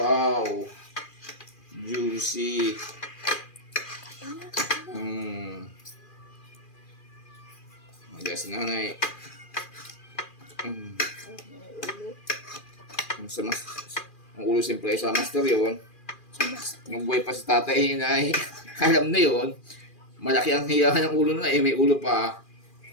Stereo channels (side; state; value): right; late; 2.4 ms